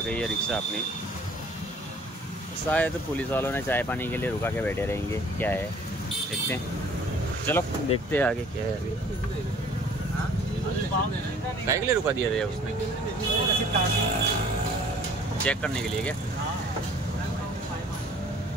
गई है रिक्शा अपनी. शायद पुलिस वालों ने चाय पानी के लिए रुका के बैठे रहेंगे. क्या है देखते हैं. चलो देखते हैं आगे क्या है. अभी काय के लिए रुका दिया था उसने? चेक करने के लिए क्या?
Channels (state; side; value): normal; both; correlation 0.53